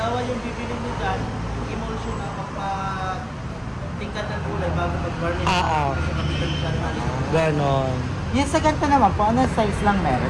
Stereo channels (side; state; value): both; identical; correlation 1.00